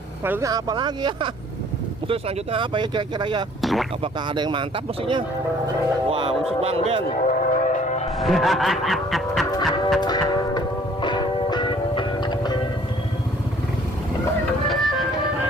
selanjutnya apa lagi ya? Musik selanjutnya apa ya kira-kira ya? Apakah ada yang mantap musiknya? Wah, musik Bang Ben.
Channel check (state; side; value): normal; both; correlation 0.56